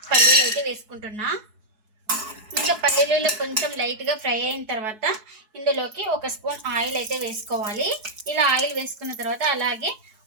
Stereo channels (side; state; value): left; late; 4.7 ms